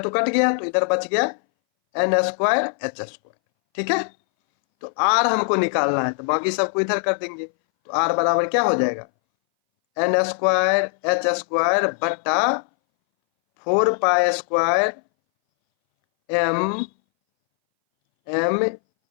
कट गया, तो इधर बच गया एन स्क्वायर एच स्क्वायर। ठीक है, तो आर हमको निकालना है, तो बाकी सबको इधर कर देंगे, तो आर बराबर क्या हो जाएगा, एन स्क्वायर एच स्क्वायर बट्टा 4 pi square M M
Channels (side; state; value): right; silent; 62 dB below the other